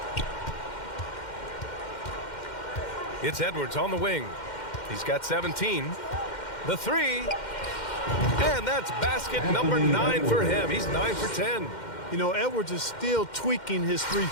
It's Edwards on the wing. He's got 17. The 3. And that's basket number 9 for him. He's 9 for 10. You know, Edwards is still tweaking his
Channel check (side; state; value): right; late; 2.1 ms